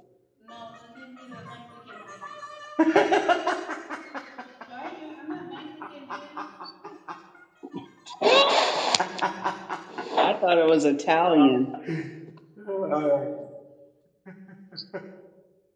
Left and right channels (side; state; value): both; identical; correlation 1.00